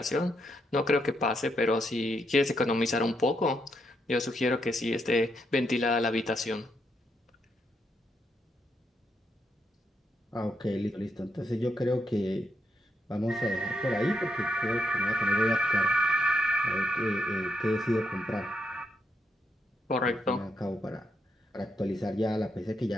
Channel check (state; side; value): normal; both; correlation 0.80